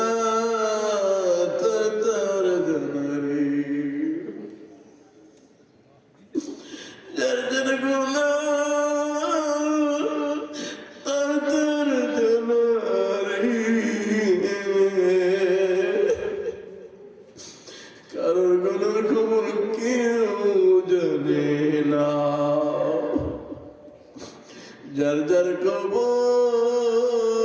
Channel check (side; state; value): both; identical; correlation 1.00